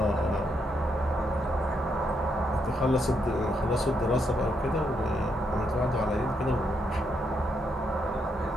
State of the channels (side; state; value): both; normal; correlation 0.78